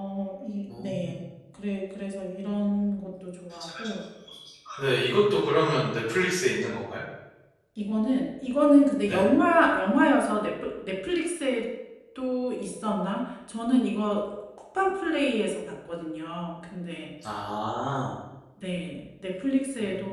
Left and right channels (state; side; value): identical; both; correlation 1.00